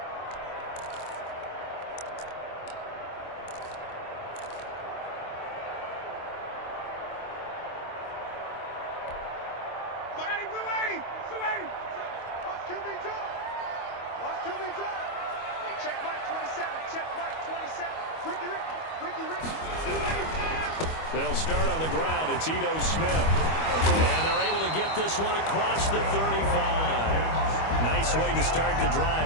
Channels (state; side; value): late; right; 25 ms